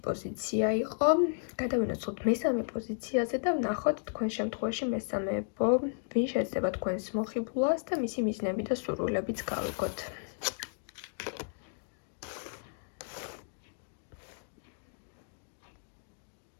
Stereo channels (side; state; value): right; silent; digital silence